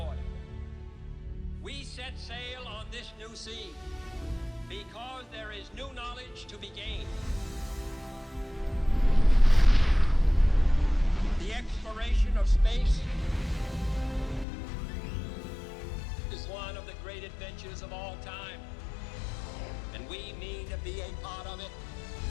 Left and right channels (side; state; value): right; drops out; at 14.5 s